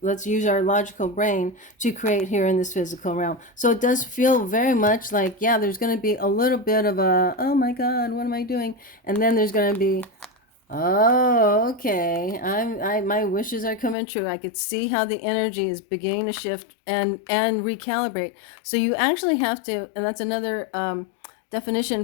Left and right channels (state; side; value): drops out; right; at 14.0 s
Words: Let's use our logical brain to create here in this physical realm. So it does feel very much like, yeah, there's going to be a little bit of a, oh my God, what am I doing? And then there's going to be, oh, okay. My wishes are coming true. I could see how the energy is beginning to shift and recalibrate. So you actually have to, and that's another